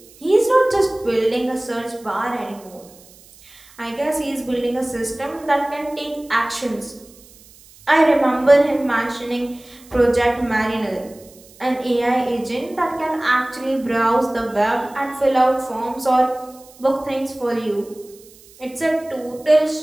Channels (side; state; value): right; noise; hiss, 24 dB below the sound